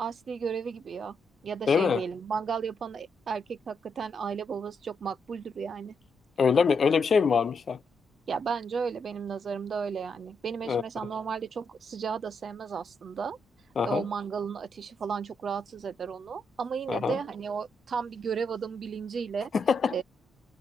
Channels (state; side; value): normal; both; correlation 0.79